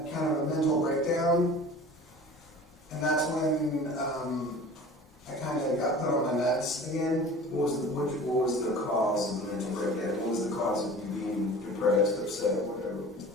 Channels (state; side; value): normal; both; correlation 0.41